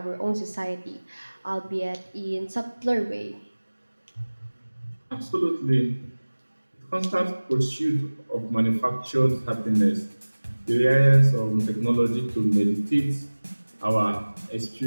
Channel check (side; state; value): both; inverted; correlation -1.00